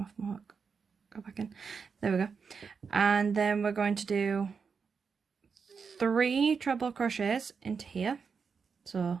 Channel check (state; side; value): quieter; left; 5.7 dB